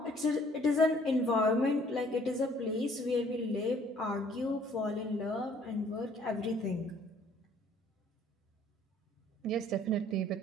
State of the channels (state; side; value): normal; both; correlation 0.59